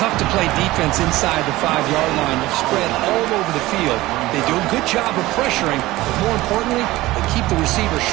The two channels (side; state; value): left; quieter; 18.1 dB